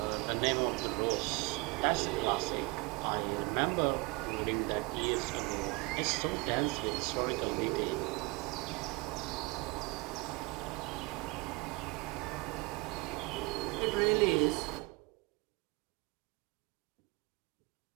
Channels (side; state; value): left; quieter; 25.3 dB